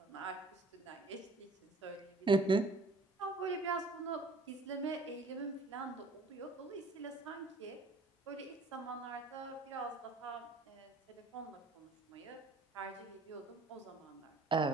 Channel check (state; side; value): quieter; left; 3.1 dB